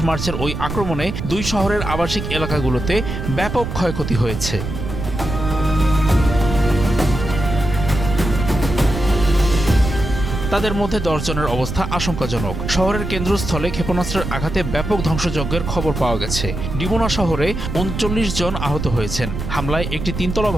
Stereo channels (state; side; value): noise; right; rumble, 5 dB below the sound